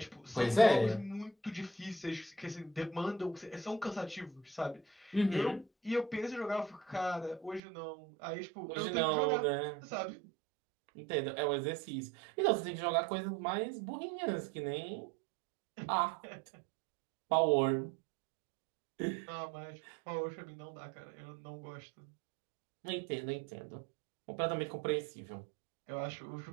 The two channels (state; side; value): drops out; left; at 7.6 s